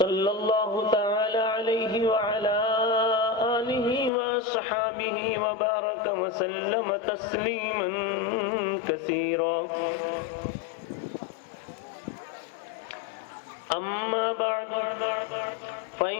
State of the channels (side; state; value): right; drops out; at 4.1 s